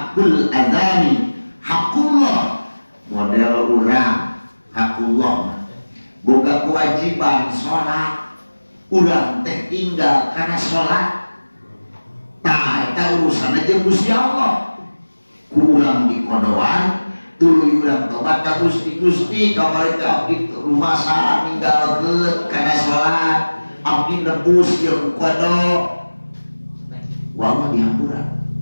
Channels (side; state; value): both; inverted; correlation -1.00